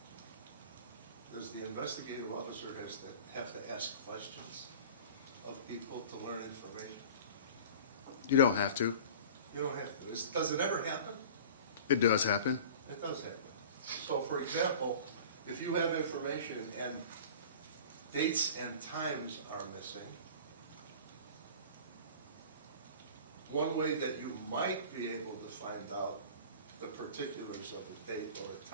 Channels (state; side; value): inverted; both; correlation -0.40